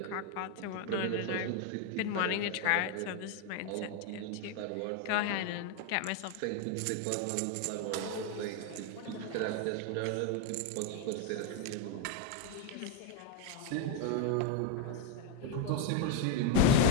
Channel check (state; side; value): different; both; correlation 0.01